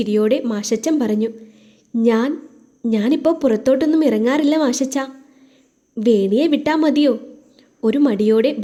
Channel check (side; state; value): both; identical; correlation 1.00